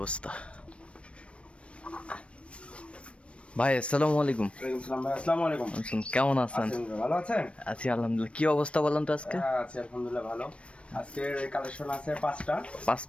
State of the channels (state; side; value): late; right; 0.061 ms